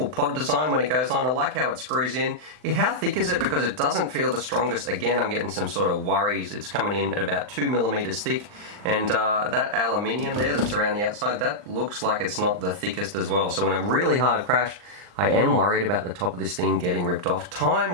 pod design when it goes on. I like how it screws in. How thick is it? Because it doesn't feel the strongest. Again, I'm getting some sort of worries. It's coming in at about 2mm thick, and that aluminium there that's around the outside, that looks like it's not the thickest as well. So in a really hard crash, I am worried about the top of this thing getting ripped off.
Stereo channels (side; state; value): left; late; 39 ms